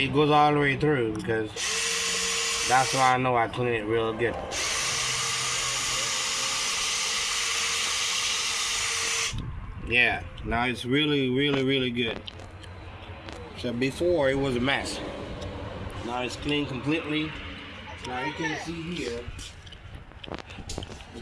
goes all the way through, because that's why I know I clean it real good. Yeah, now it's really, really, really good. So before it was a mess. Now it's clean completely. Now you can see here the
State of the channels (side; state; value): both; identical; correlation 1.00